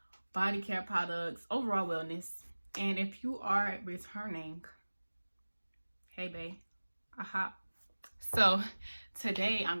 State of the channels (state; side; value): inverted; both; correlation -1.00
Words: body care products, overall wellness. And if you are returning, hey babe, aha. So today I'm